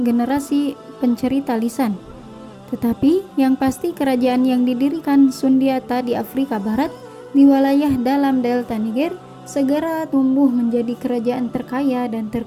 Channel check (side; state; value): both; identical; correlation 1.00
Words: pencerita lisan. Tetapi yang pasti kerajaan yang didirikan Sundiata di Afrika Barat di wilayah dalam delta Niger segera tumbuh menjadi kerajaan terkaya dan